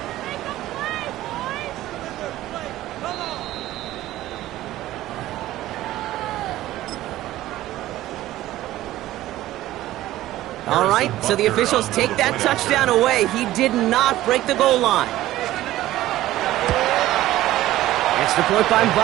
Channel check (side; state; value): left; quieter; 15.1 dB